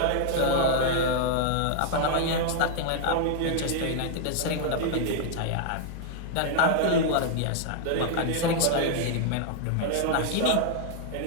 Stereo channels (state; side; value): different; both; correlation -0.01